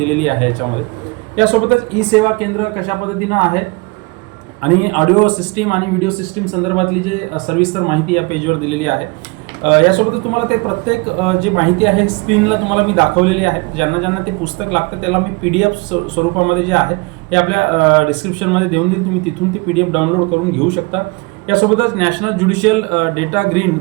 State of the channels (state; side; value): quieter; left; 27.6 dB